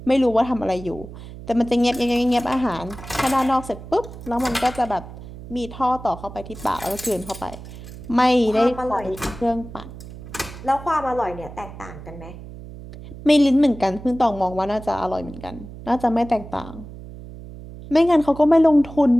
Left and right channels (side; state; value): right; noise; hum, 14 dB below the sound